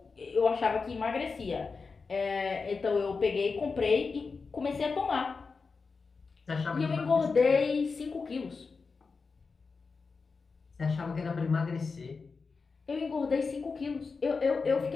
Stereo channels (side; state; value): right; quieter; 4.6 dB